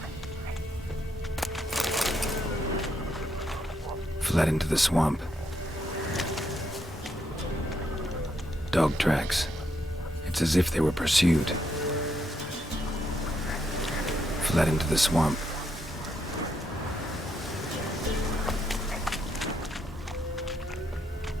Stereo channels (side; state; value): both; normal; correlation 0.77